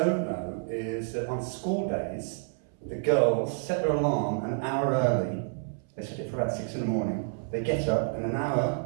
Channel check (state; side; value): silent; left; 58 dB below the other